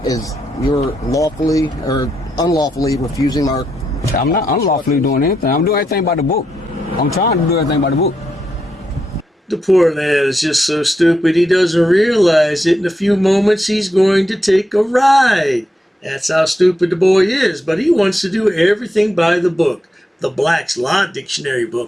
as you're lawfully or unlawfully refusing our... I'm not unlawfully doing anything. I'm doing everything by the book. I'm trying to do everything by the book. The poor lad is just so stupid he doesn't realize that in a few moments he's going to take a ride. That's how stupid the boy is, but he wants to do everything by the book. The Black's Law Dictionary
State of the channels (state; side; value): normal; both; correlation 0.82